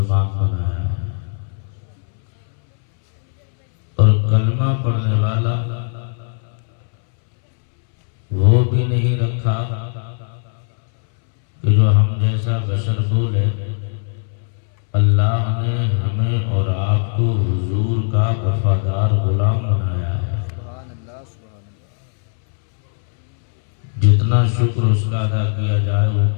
بنایا ہے، اور کلمہ پڑھنے والا وہ بھی نہیں رکھا کہ جو ہم جیسا بشر بولے۔ اللہ نے ہمیں اور آپ کو حضور کا وفادار غلام بنایا ہے۔ جتنا شکر اس کا ادا کیا جائے وہ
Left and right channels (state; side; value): silent; right; 67 dB below the other